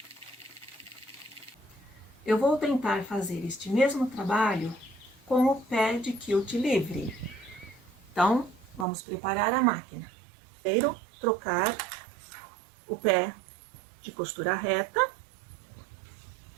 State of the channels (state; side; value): drops out; left; at 8.8 s